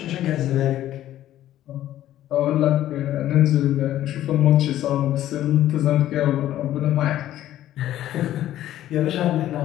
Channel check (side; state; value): right; quieter; 13.0 dB